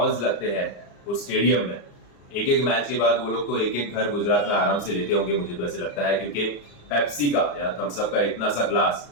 लगते हैं उस स्टेडियम में, एक एक मैच के बाद वो लोग तो एक एक घर गुजरात में आराम से लेते होंगे, मुझे तो ऐसे लगता है, क्योंकि पेप्सी का या थम्स अप का इतना सा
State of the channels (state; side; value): late; right; 34 ms